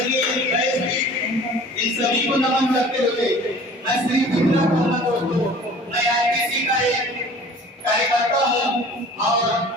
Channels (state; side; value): normal; both; correlation 0.46